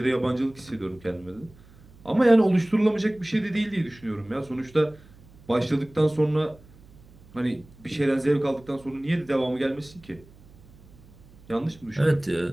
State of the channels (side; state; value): right; noise; hum, 24 dB below the sound